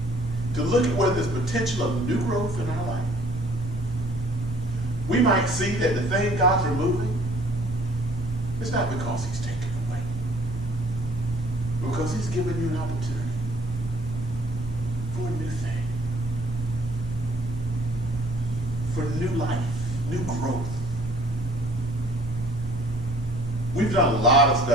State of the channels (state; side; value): normal; both; correlation 0.57